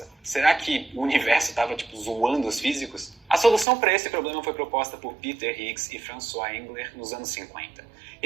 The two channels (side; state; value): left; drops out; at 3.7 s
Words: Será que o universo estava zoando os físicos? A solução para esse problema foi proposta por Peter Higgs e François Engler nos anos 50.